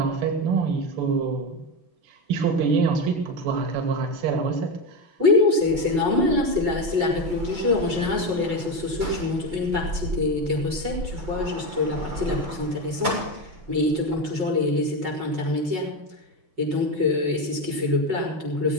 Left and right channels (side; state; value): left; late; 5.5 ms